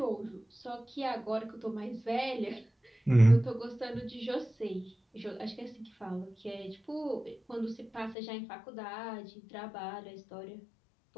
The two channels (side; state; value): right; drops out; at 8.2 s